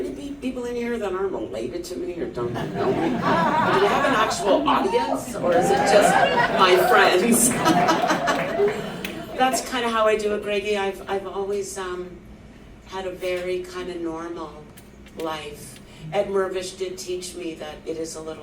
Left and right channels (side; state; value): both; identical; correlation 1.00